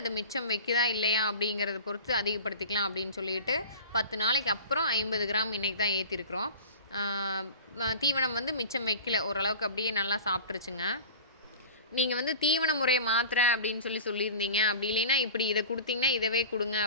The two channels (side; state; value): both; inverted; correlation -0.37